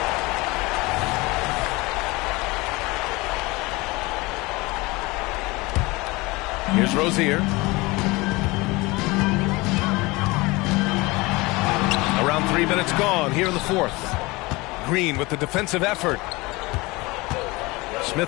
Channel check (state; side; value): quieter; right; 23.1 dB